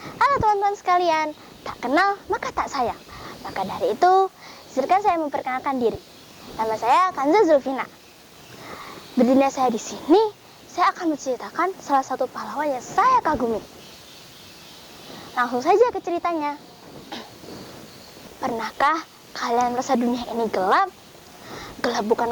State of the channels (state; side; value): identical; both; correlation 1.00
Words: teman-teman sekalian, tak kenal maka tak sayang. Maka dari itu, izinkan saya memperkenalkan diri. Nama saya Kanza Zulfina. Berdirinya saya di sini, saya akan menceritakan salah satu pahlawan yang saya kagumi. Langsung saja ke ceritanya. Pernahkah kalian merasa dunia ini gelap? Gelap bukan